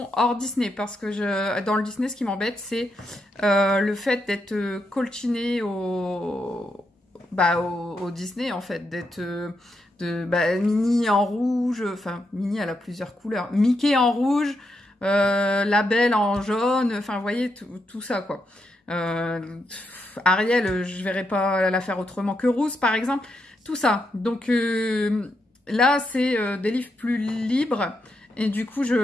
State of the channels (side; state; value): both; normal; correlation 0.82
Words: hors Disney parce que dans le Disney, ce qui m'embête, c'est le fait d'être colchiné au Disney, en fait, d'être Minnie en rouge, enfin, Minnie, elle a plusieurs couleurs. Mickey en rouge, la Belle en jaune, enfin, vous voyez, tout ça, quoi. Ariel, je verrais pas la faire autrement que Rousse, par exemple. Tout ça. Donc, là, c'est des livres plus libres. Et du coup,